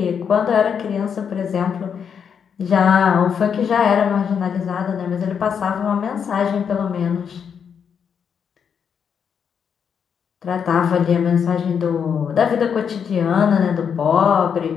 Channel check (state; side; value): quieter; right; 7.2 dB